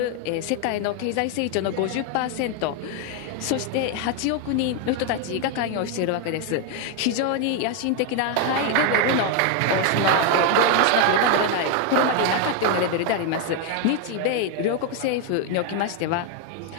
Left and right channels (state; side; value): different; both; correlation 0.01